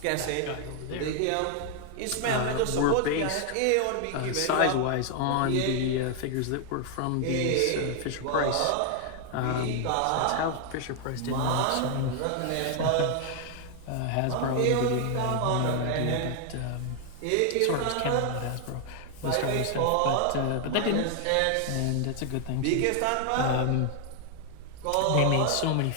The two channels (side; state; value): both; different; correlation 0.00